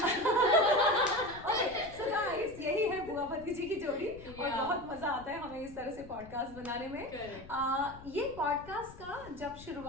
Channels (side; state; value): left; noise; rumble, 17 dB below the sound